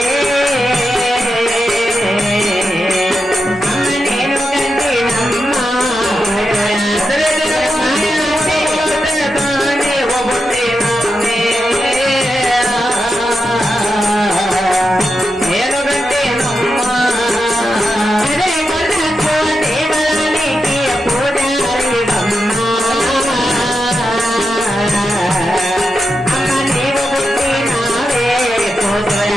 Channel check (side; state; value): both; normal; correlation 0.87